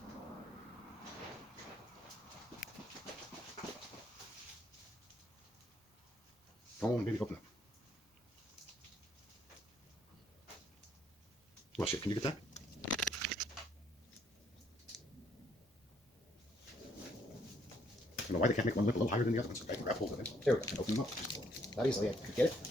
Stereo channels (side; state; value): both; normal; correlation 0.69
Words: Come on, baby, open up. Well, shit, can you get that? I don't know why they can't make one lip a little higher than the other one, so I can grab hold of it. There we go. And open them up. Not easily. I could get it.